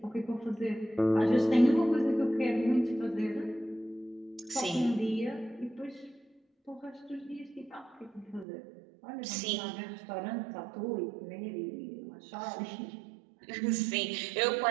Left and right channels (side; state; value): left; drops out; at 8.5 s